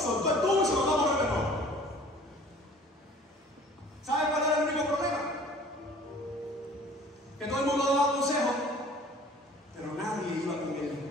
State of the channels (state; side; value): normal; both; correlation 0.49